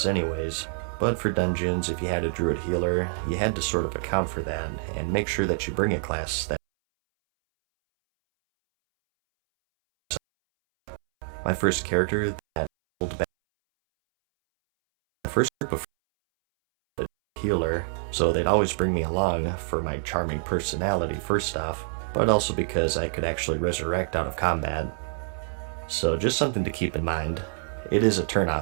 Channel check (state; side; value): silent; left; 61 dB below the other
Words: anyways, but for dungeons, if you had a druid healer, you had to sort of account for that and make sure that you bring a class that my first character that pulled back the first group of healer, so they'd always bring me along for my charming personality first off, but also because I could actually resurrect out of combat. So just something to keep in mind. It is a